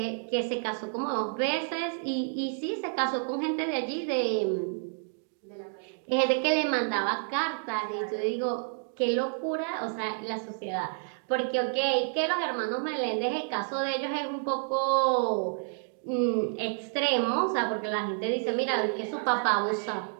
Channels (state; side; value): silent; left; 58 dB below the other